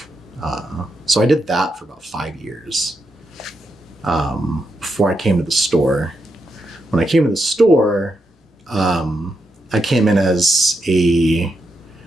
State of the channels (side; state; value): both; normal; correlation 0.83